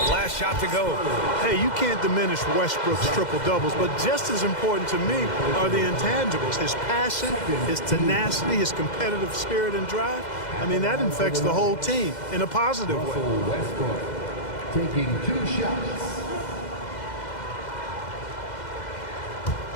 shot to go. Hey, you can't diminish Westbrook's triple-doubles, but just as important to me are the intangibles. His passion, his tenacity, his competitive spirit and drive. I mean, that infects the whole team in a positive way. Westbrook taking 2 shots.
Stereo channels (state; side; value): late; right; 2.0 ms